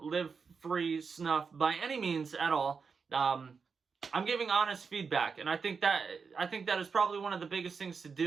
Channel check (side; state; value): left; quieter; 5.4 dB